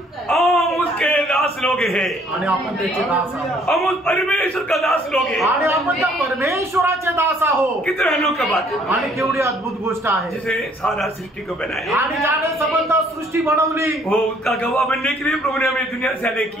हम उसके दास लोग हैं आणि आपण त्याचे दास आहोत हम उस परमेश्वर का दास लोग हैं आणि आपण त्या परमेश्वराचे दास आहोत. कितने अनोखी बात है आणि केवढी अद्भुत गोष्ट आहे. जिसे सारा सृष्टि को बनाया आणि ज्याने संबंध सृष्टी बनवली वो उसका गवाह बनने के लिए प्रभु ने हमें दुनिया से अलग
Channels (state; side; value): normal; both; correlation 0.62